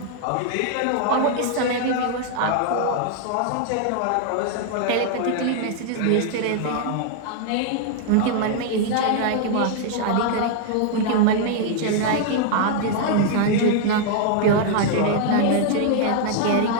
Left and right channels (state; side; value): different; both; correlation 0.00